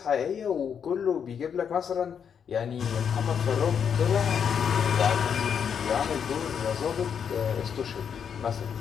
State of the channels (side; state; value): right; quieter; 7.5 dB